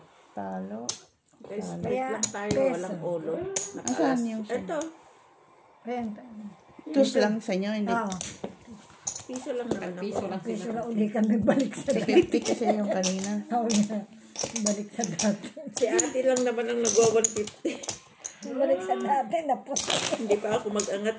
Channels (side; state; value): both; identical; correlation 1.00